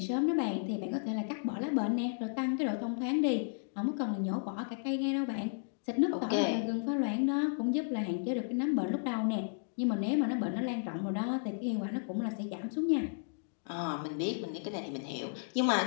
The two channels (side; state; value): right; silent; digital silence